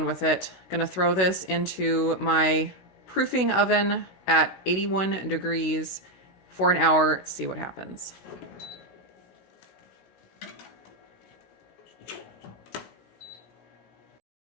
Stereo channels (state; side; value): late; right; 16 ms